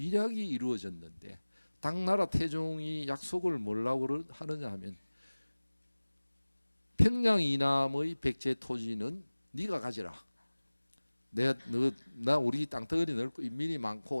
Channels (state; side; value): inverted; both; correlation -1.00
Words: 이루어졌는데 당나라 태종이 약속을 뭐라고 하느냐 하면 평양 이남의 백제 토지는 네가 가지라. 나 우리 땅덩어리 넓고 인민이